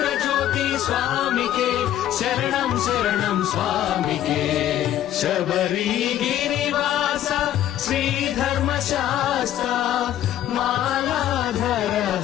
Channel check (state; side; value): quieter; right; 12.0 dB